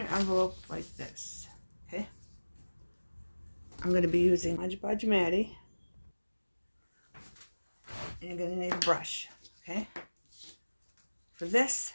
envelope like this. Okay, I'm going to be using Mod Podge Matty, and you're going to need a brush. Okay, for this,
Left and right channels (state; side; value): inverted; both; correlation -1.00